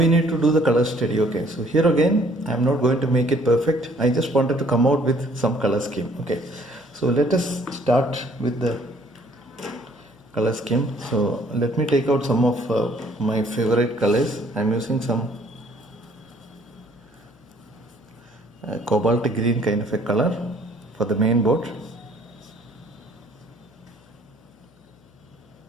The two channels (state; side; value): noise; left; hum, 30 dB below the sound